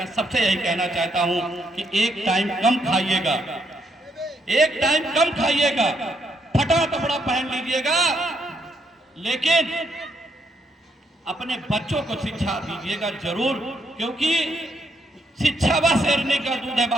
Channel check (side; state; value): both; normal; correlation 0.76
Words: सबसे यही कहना चाहता हूँ कि एक टाइम कम खाइएगा, एक टाइम कम खाइएगा, फटा कपड़ा पहन लीजिएगा, लेकिन अपने बच्चों को शिक्षा दीजिएगा जरूर, क्योंकि शिक्षा वह शेरनी का दूध है।